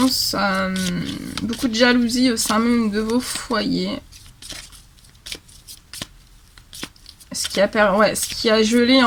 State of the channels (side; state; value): both; identical; correlation 1.00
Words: Beaucoup de jalousie au sein même de vos foyers. Ce qui a gelé